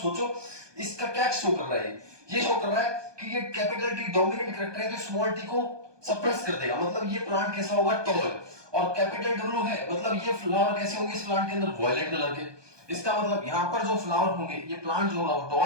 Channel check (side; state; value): left; late; 1.2 ms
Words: इसका क्या शो कर रहा है, ये शो कर रहा है कि ये कैपिटल टी डोमिनेंट करैक्टर है तो स्मॉल टी को सप्रेस कर देगा, मतलब ये प्लांट कैसा होगा टॉल। और कैपिटल W है मतलब ये फ्लावर कैसे होंगे इस प्लांट के अंदर वायलेट कलर के। इसका मतलब यहाँ पर जो फ्लावर होंगे ये प्लांट जो होगा वो